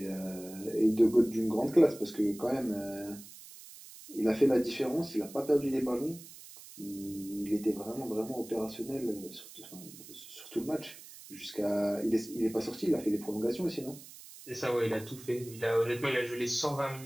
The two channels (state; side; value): noise; right; hiss, 17 dB below the sound